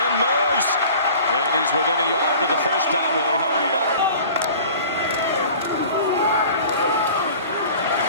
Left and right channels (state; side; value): inverted; both; correlation -0.44